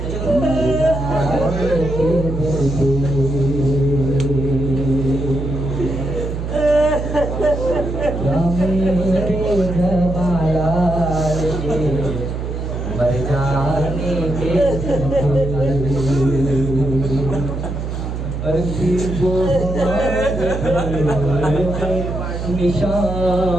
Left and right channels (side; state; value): right; noise; hum, 4 dB below the sound